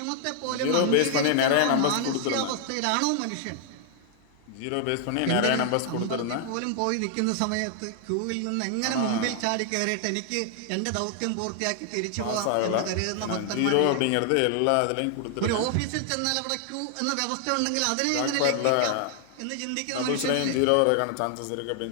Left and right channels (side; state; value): both; different; correlation 0.00